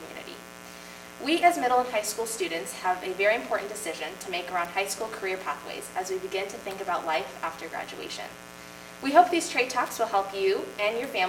We as middle and high school students have a very important decision to make around high school career pathways as we begin to think about life after graduation. We hope these trade talks will help you and your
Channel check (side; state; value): both; identical; correlation 1.00